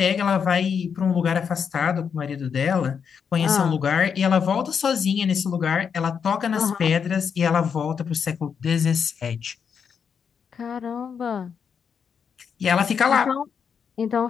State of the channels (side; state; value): right; quieter; 6.8 dB